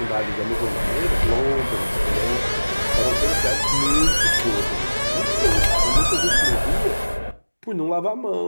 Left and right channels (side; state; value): both; inverted; correlation -1.00